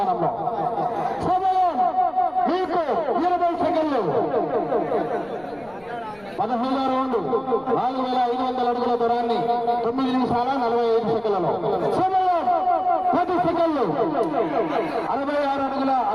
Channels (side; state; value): left; noise; rumble, 27 dB below the sound